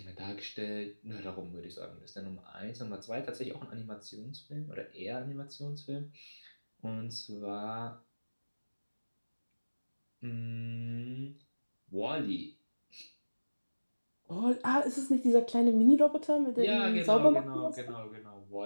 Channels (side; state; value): both; inverted; correlation -1.00